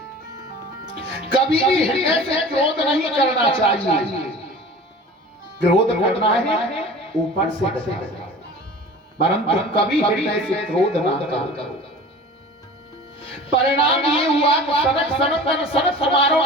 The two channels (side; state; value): both; normal; correlation 0.40